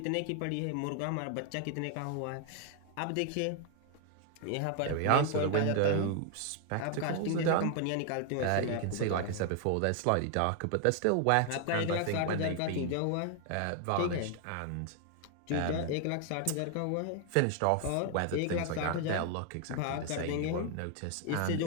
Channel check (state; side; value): different; both; correlation 0.00